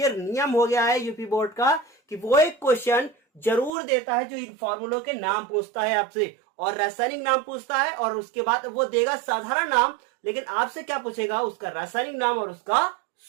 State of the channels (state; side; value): drops out; left; at 3.7 s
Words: नियम हो गया है यूपी बोर्ड का कि वो एक क्वेश्चन जरूर देता है जो इन फॉर्मूलों के नाम पूछता है आपसे, और रासायनिक नाम पूछता है, और उसके बाद वो देगा साधारण नाम, लेकिन आपसे क्या पूछेगा? उसका रासायनिक नाम और उसका